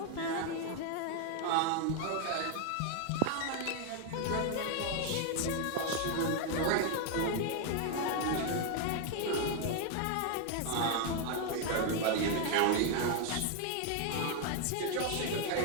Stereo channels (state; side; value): different; both; correlation 0.00